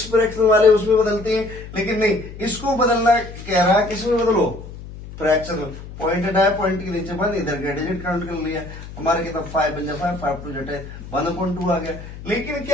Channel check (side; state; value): left; noise; hum, 13 dB below the sound